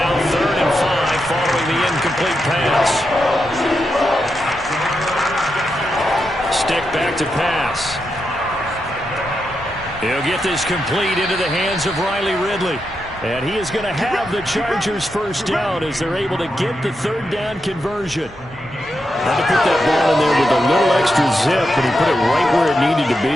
3rd and 5 following the incomplete pass. Stick back to pass. He'll get this complete into the hands of Riley Ridley. And he is going to have the Chargers first down as they're able to get the 3rd down conversion. Had to put that ball in there with a little extra zip, and he put it right where it needed to be.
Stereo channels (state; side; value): normal; both; correlation 0.86